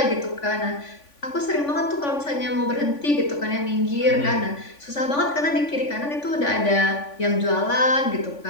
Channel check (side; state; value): right; late; 3.5 ms